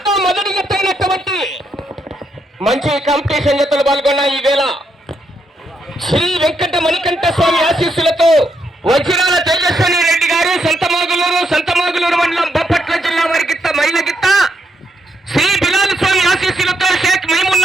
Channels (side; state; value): both; normal; correlation 0.79